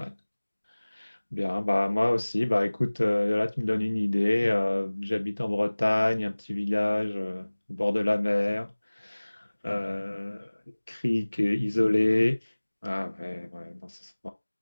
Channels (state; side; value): inverted; both; correlation -1.00